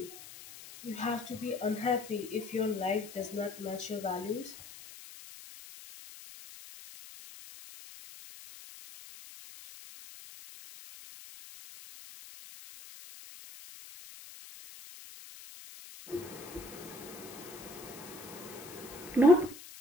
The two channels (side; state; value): left; noise; hiss, 15 dB below the sound